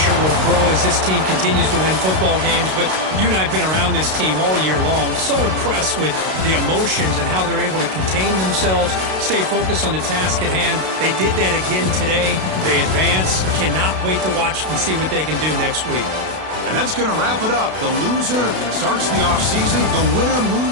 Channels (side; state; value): left; late; 32 ms